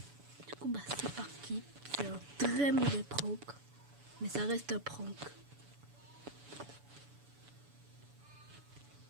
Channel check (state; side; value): late; left; 7.0 ms